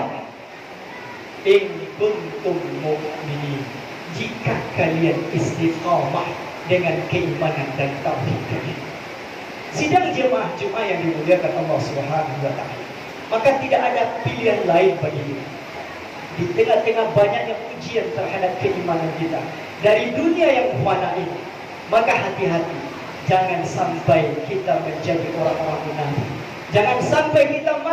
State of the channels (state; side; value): identical; both; correlation 1.00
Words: In kuntum mu'minin. Jika kalian istiqamah dengan keimanan dan tauhid kalian. Sidang jemaah Jumat yang dimuliakan Allah Subhanahu wa ta'ala, maka tidak ada pilihan lain bagi kita. Di tengah-tengah banyaknya ujian terhadap keimanan kita dari dunia yang fana ini, maka hati-hati, jangan sampai kita menjadi orang-orang munafik. Jangan sampai kita